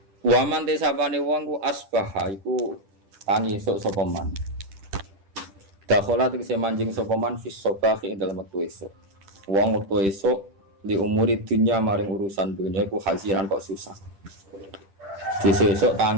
Waman desapane wong ku asbaha iku tangi esuk sapa man. Dakhala tegese manjing sapa man fis sabahi ing dalem wektu esuk. Wong wektu esuk li umuri dunya maring urusan dunya iku hazinan kok susah. Sesuk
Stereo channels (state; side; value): late; left; 10 ms